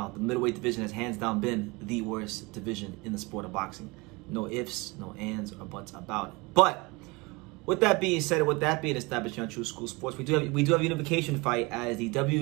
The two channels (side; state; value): left; quieter; 25.5 dB